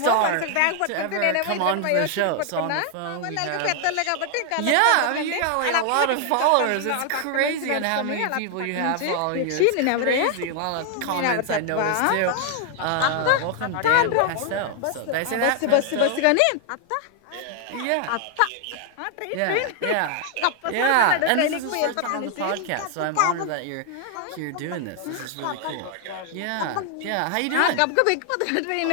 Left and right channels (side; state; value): both; different; correlation 0.00